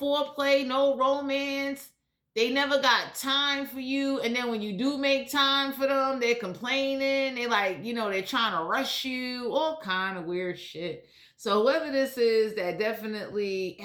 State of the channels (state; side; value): identical; both; correlation 1.00